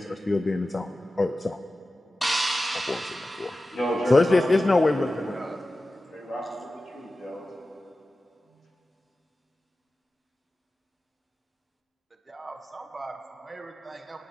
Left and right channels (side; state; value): both; normal; correlation 0.95